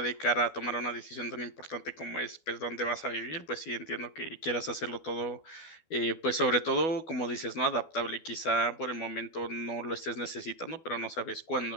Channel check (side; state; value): right; late; 12 ms